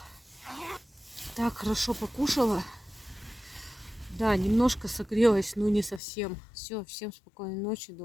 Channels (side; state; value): right; drops out; at 6.0 s